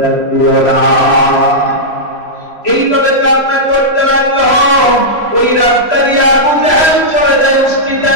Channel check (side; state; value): right; late; 3.0 ms